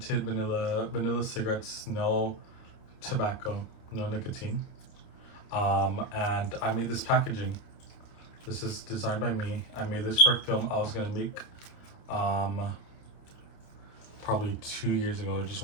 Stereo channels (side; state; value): right; late; 29 ms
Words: vanilla cigarettes, no tobacco, no nicotine. And I made this packaging. This is designed by me. I made this for a film I was gonna make probably 2 years ago or just